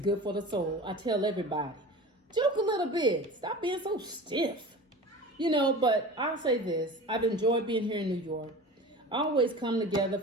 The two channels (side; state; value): both; normal; correlation 0.34